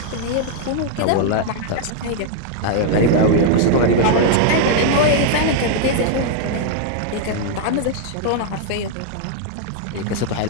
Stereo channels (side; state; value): both; different; correlation 0.00